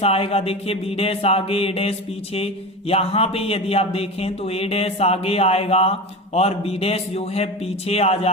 आएगा। देखिए बी डैश आगे ए डैश पीछे, यहाँ पे यदि आप देखें तो ए डैश आगे आएगा और बी डैश जो है पीछे आ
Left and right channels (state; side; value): normal; both; correlation 0.27